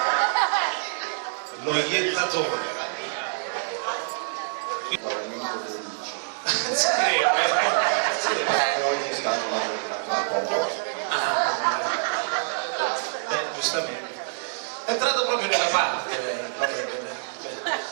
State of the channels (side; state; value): left; silent; digital silence